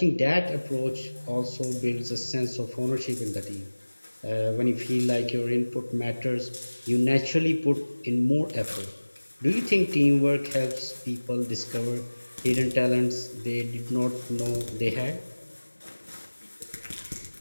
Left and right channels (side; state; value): both; inverted; correlation -1.00